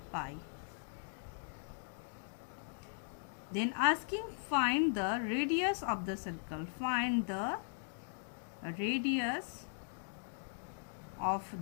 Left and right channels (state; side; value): silent; right; digital silence